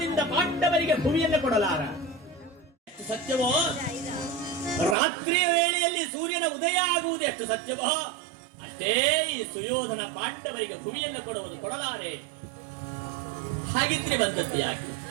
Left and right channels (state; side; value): drops out; left; at 5.0 s